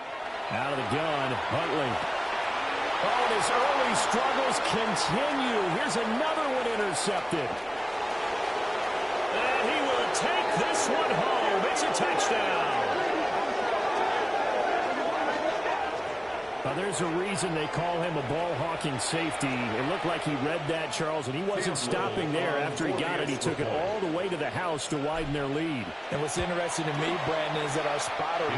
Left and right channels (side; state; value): both; identical; correlation 1.00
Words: Out of the gun, Huntley. Oh, and his early struggles continue. Here's another one intercepted. And he will take this one home. It's a touchdown. Now, there's a reason they call him a ball-hawking safety. It looked like he read that, Charles, and he wasn't stopping there. After he got it, he took it all the way to the house to widen their lead. And what's interesting to me, Brandon, is that our spotter,